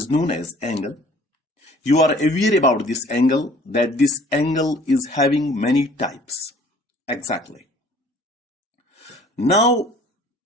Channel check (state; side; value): normal; both; correlation 0.53